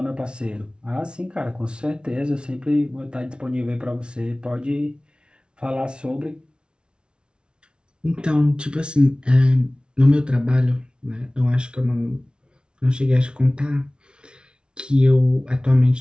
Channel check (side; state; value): left; late; 0.056 ms